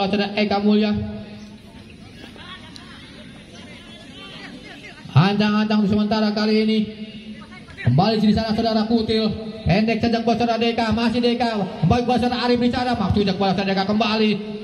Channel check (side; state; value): both; identical; correlation 1.00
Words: oleh saudara Eka Mulya. Ancang-ancang sementara kali ini. Kembali di sana saudara Kutil, pendek saja buat saudara Deka, masih Deka kembali buat saudara Arif di sana, maksudnya buat saudara Deka kembali,